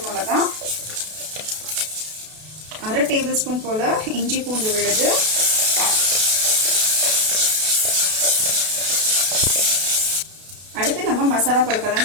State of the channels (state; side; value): late; left; 32 ms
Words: மிளகா, 1/2 டேபிள் ஸ்பூன் போல இஞ்சி பூண்டு விழுது, அடுத்து நம்ம மசாலா